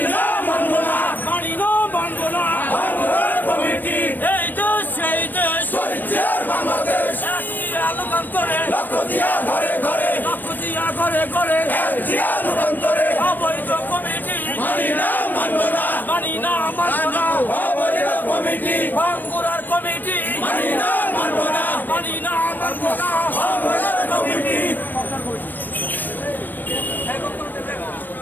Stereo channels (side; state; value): right; late; 0.090 ms